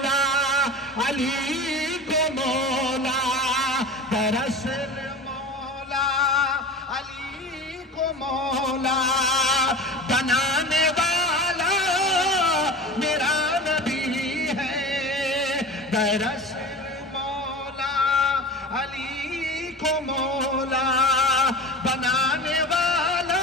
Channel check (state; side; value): normal; both; correlation 0.32